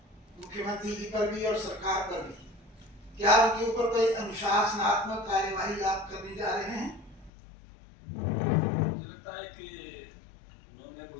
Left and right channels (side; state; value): right; drops out; at 7.3 s